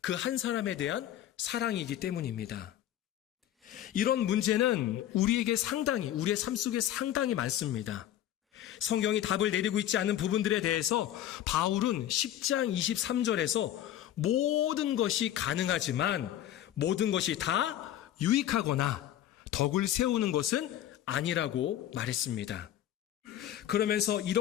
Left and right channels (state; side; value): quieter; right; 11.9 dB